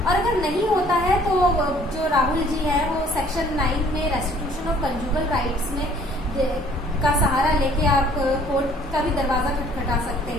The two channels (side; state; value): both; normal; correlation 0.57